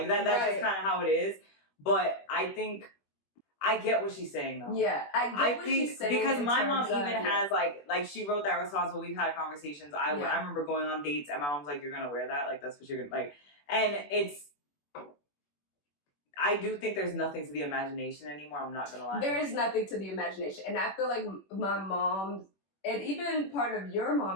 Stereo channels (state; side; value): late; right; 21 ms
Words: that's just kind of how it is. But I think I get what she's saying though. Yeah, I get what she's saying because my mom even has like she wrote that response. But we've had conversations. I remember going on dates and my mom's like, "You're gonna wear that? Like that's what you're gonna like." And it's. I do think there's nothing to the imagination anymore. I'm not gonna lie. There is nothing to the imagination, and I feel like my mom and even part of your